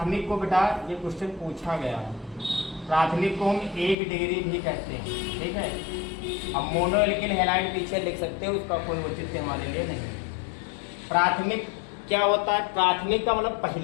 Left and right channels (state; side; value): drops out; right; at 4.0 s